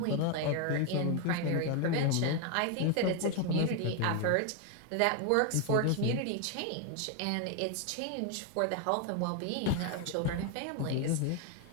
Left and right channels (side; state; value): both; different; correlation 0.01